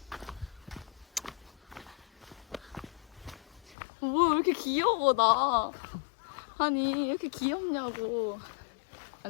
뭐 이렇게 귀여워 나. 아니 이렇게 귀엽냐고.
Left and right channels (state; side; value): drops out; right; at 3.8 s